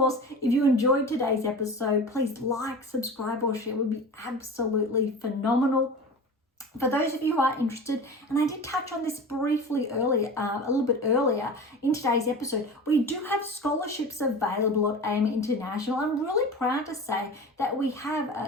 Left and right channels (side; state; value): both; normal; correlation 0.33